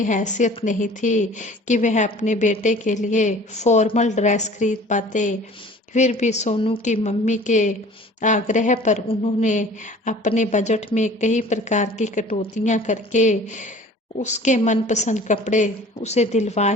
हैसियत नहीं थी कि वह अपने बेटे के लिए फॉर्मल ड्रेस खरीद पाते। फिर भी सोनू की मम्मी के आग्रह पर उन्होंने अपने बजट में कई प्रकार की कटौतियां करके उसके मनपसंद कपड़े उसे दिलवा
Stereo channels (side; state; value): both; normal; correlation 0.47